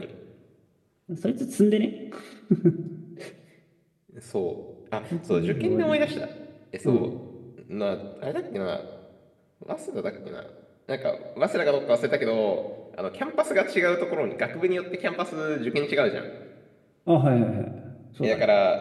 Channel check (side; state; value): both; identical; correlation 1.00